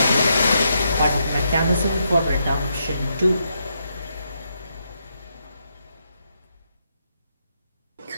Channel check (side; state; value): both; inverted; correlation -0.80